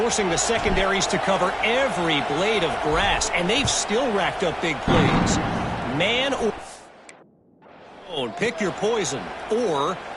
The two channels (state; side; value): identical; both; correlation 1.00